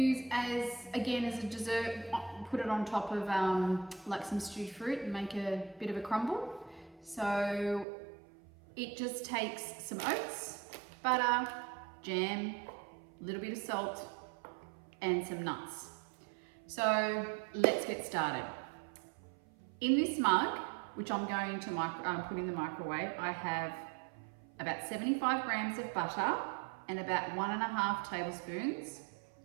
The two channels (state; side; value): drops out; left; at 7.9 s